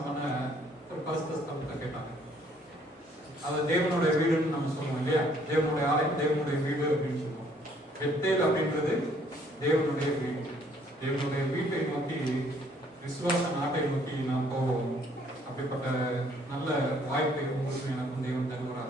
பண்ண ஒரு பரிசுத்த ஸ்தலத்தை கேட்டாங்க. அது தேவனுடைய வீடுன்னு நம்ம சொல்லுவோம் இல்லையா, தேவனுடைய ஆலயம், தேவனுடைய வீடு அப்படின்னு சொல்லுவோம். பெத்தேல் அப்படின்றது தேவனுடைய வீடு. தேவனுடைய வீட்டை நோக்கி, விசுவாச நாட்டை நோக்கி நாம் போவோம். அப்படிப்பட்ட நல்ல வாய்ப்பை உங்களுக்கு எனக்கும் தேவன்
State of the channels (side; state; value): both; normal; correlation 0.63